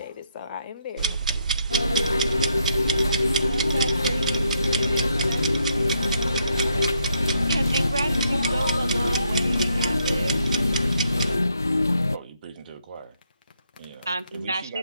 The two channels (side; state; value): both; inverted; correlation -0.76